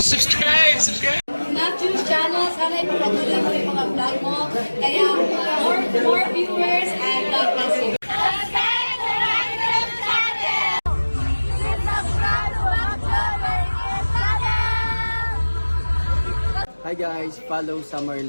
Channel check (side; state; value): both; inverted; correlation -1.00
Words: Subscribe! Matthew channel, sana ipapatuloy mo yung mga vlog mo. Kaya more viewers and God bless you. Hi guys, follow Summer